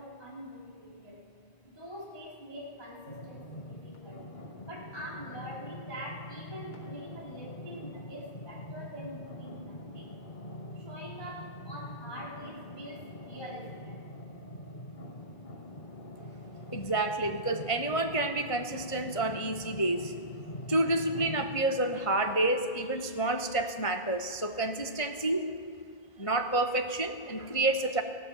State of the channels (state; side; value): late; right; 1.5 ms